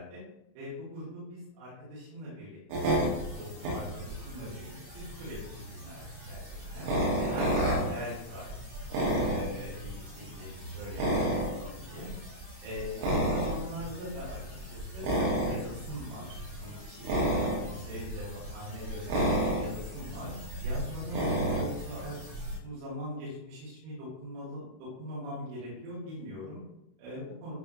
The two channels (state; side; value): late; left; 31 ms